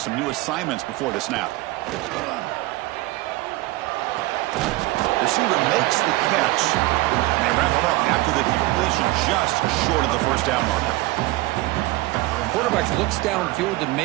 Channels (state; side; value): quieter; left; 19.7 dB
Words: new assignments before the snap. Receiver makes the catch. And they wrap it up after the completion just short of the first down marker. Quarterback looks downfield to